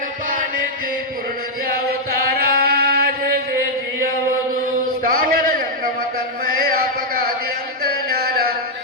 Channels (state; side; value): normal; both; correlation -0.04